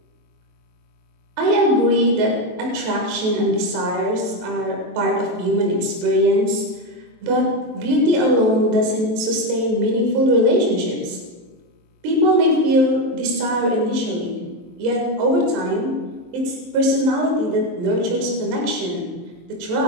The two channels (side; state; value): left; late; 23 ms